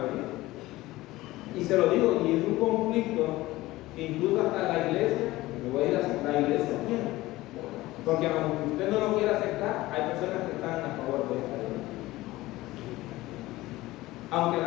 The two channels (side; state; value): right; quieter; 18.2 dB